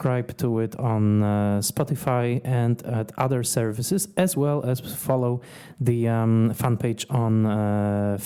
to it on Spotify and at other services, as well as follow the fan page on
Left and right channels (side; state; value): both; identical; correlation 1.00